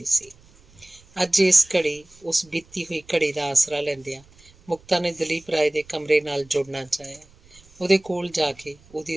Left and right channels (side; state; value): right; noise; rumble, 27 dB below the sound